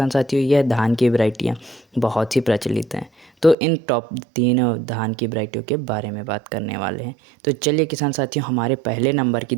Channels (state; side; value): drops out; left; at 3.6 s